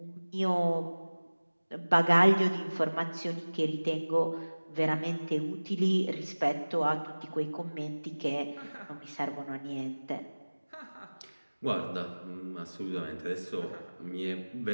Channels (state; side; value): inverted; both; correlation -1.00